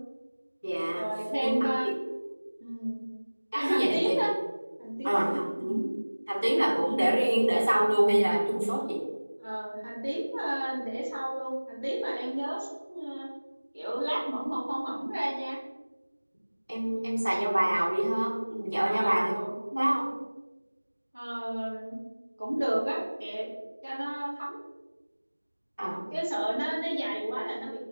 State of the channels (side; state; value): both; inverted; correlation -1.00